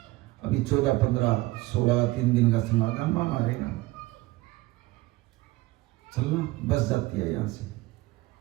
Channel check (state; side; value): quieter; left; 19.8 dB